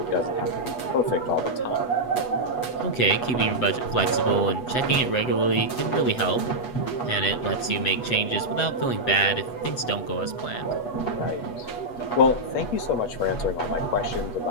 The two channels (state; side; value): late; right; 8.2 ms